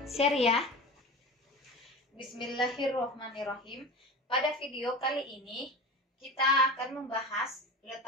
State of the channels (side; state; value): both; normal; correlation 0.32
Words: share ya. Bismillahirrahmanirrahim. Pada video kali ini kita akan membahas